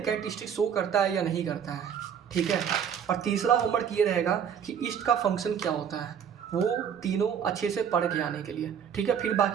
कैरेक्टरिस्टिक शो करता है या नहीं करता है, ठीक है। और तीसरा होमवर्क ये रहेगा कि ईस्ट का फंक्शन क्या होता है, वो तीनों अच्छे से पढ़ के आने के लिए, ठीक है। फिर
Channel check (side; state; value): left; quieter; 8.0 dB